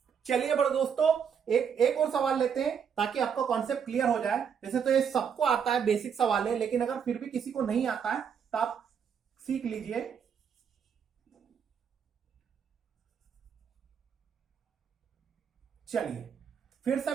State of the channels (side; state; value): left; quieter; 7.3 dB